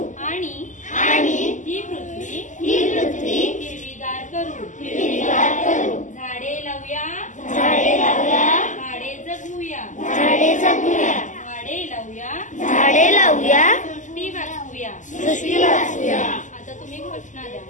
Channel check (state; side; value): late; right; 0.37 ms